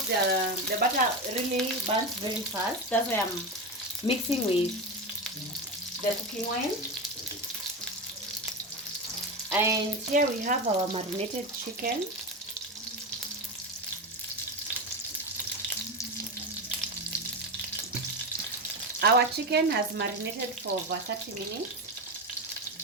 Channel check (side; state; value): both; normal; correlation 0.18